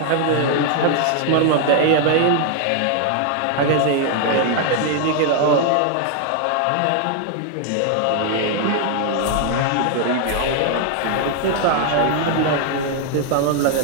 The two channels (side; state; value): both; different; correlation 0.00